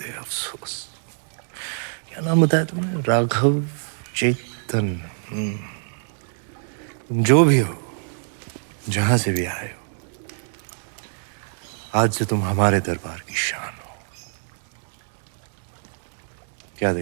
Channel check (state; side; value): silent; left; digital silence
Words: अफसोस। क्या नाम बताया तुमने? राघव चेतन। तुम जो भी हो, जहां से भी आए हो, आज से तुम हमारे दरबार की शान हो। क्या